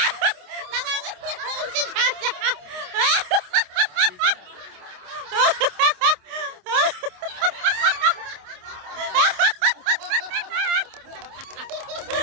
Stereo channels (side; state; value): left; late; 27 ms